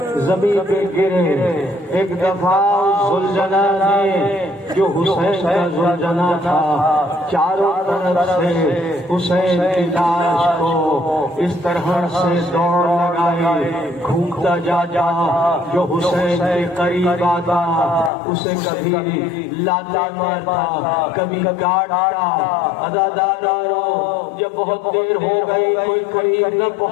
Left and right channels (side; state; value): right; drops out; at 18.1 s